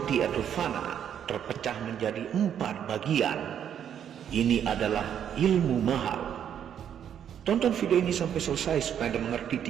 atau fana terpecah menjadi 4 bagian. Ini adalah ilmu mahal. Tonton video ini sampai selesai supaya Anda mengerti,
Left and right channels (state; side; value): quieter; left; 9.1 dB